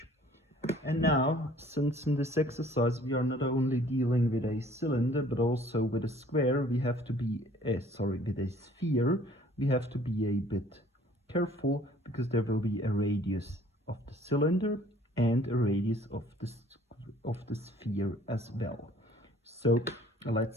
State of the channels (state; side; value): normal; both; correlation 0.55